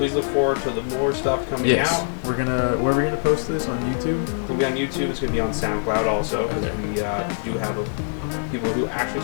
look forward to the more stuff coming out. Where are we gonna post this on YouTube? It's gonna be on YouTube. It's gonna be on SoundCloud also because we do have people who actually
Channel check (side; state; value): right; silent; digital silence